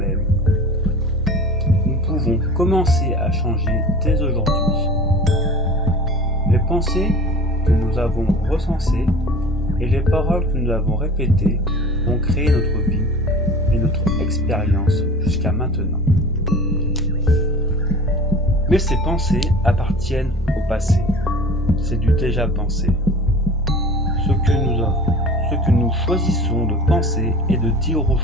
nous pouvons commencer à changer dès aujourd'hui. Les pensées que nous avons recensées et les paroles que nous avons répétées ont créé notre vie et notre expérience jusqu'à maintenant. Mais ces pensées appartiennent au passé. C'est du déjà pensé. Ce que nous choisissons de penser et de dire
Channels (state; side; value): normal; both; correlation 0.41